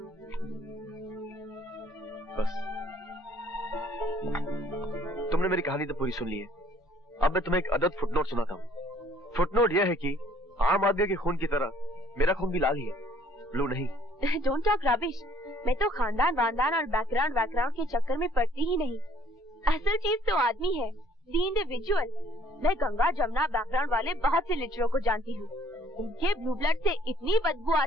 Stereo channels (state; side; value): normal; both; correlation 0.60